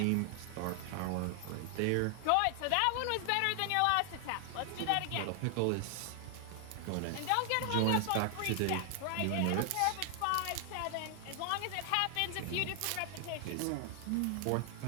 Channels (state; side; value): different; both; correlation 0.00